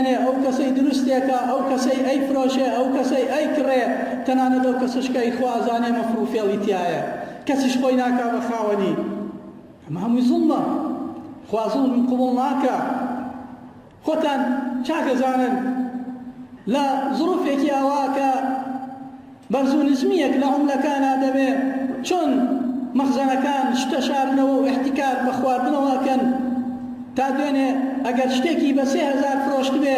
ئەو کەسەی دروستێکە ئەو کەسەی ئەیفرۆشێ ئەو کەسەی ئەیکڕێ تەنانەت ئەو کەسشکەی خوازانێ مەفر و فێڵی تایە کەسیش خۆی ناکا بە خاوەنی ئەمە هەمووی زوڵمە خوا زوڵم قبوڵ ناکە. خۆتان چاکەزانن لە زروفێکی ئەوا کە بەرز و نزمیەک لە عوملەکانە دەبێ چۆن مەخزەنەکان شتە شارنەوە و احتیکار بە خواردنەوەکەن تا دوێنێ ئەگەر شتێکی بە 3000 فرۆشت بێ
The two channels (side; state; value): both; identical; correlation 1.00